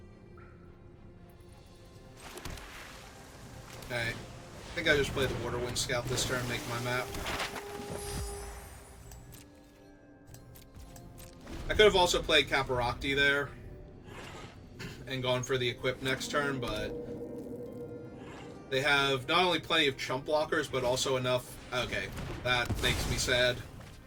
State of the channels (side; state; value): both; identical; correlation 1.00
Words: Okay. I think I just played the Waterwind Scout this turn, make my map. I could have also played Caparocti there and gone for the equip next turn, but they have not only plenty of chump blockers, but also enough... Okay, that makes me sad.